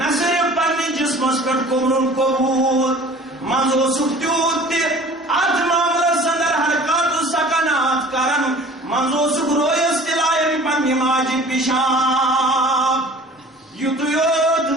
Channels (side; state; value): both; normal; correlation 0.46